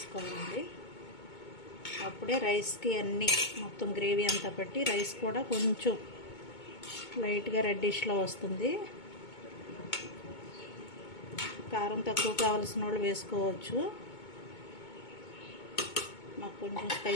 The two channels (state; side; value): late; right; 2.2 ms